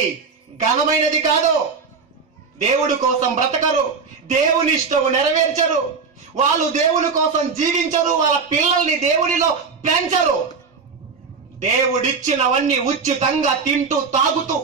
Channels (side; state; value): left; quieter; 5.2 dB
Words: ఘనమైనది కాదు. దేవుడి కోసం బ్రతకరు, దేవుని ఇష్టము నెరవేర్చరు, వాళ్ళు దేవుని కోసం జీవించరు, వాళ్ళ పిల్లల్ని దేవుడిలో పెంచరు. దేవుడిచ్చినవన్నీ ఉచితంగా తింటూ తాగుతూ